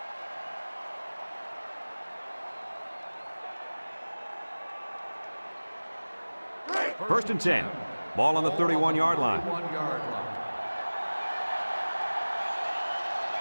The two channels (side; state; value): both; inverted; correlation -1.00